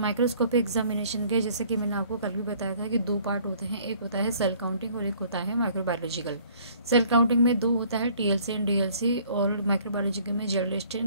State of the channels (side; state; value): both; inverted; correlation -0.57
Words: एग्जामिनेशन के जैसे कि मैंने आपको कल भी बताया था कि दो पार्ट होते हैं, एक होता है सेल काउंटिंग और एक होता है माइक्रोबायोलॉजिकल। सेल काउंटिंग में दो होता है, टीएलसी एंड डीएलसी, और माइक्रोबायोलॉजिकल में